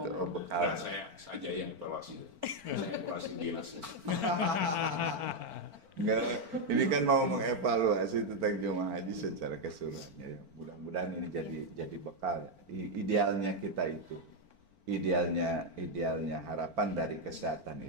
bekal. Nah, saya saja yang evaluasi. Saya evaluasi dinasnya. Enggak, ini kan mau mengevaluasi tentang jemaah haji secara keseluruhannya. Mudah-mudahan ini jadi bekal ya. Idealnya kita itu, idealnya harapan dari kesehatan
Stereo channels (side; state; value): left; late; 4.4 ms